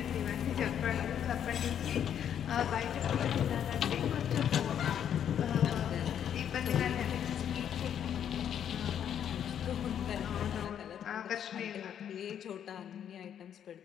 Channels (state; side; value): quieter; right; 9.2 dB